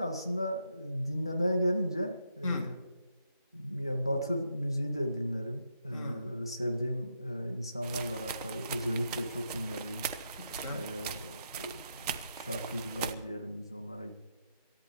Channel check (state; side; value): inverted; both; correlation -0.81